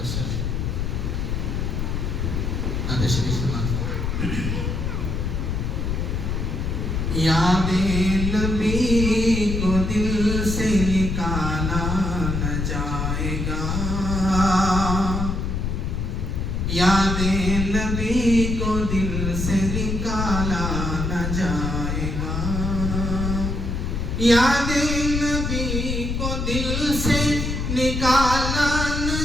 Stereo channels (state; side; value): noise; left; rumble, 1 dB below the sound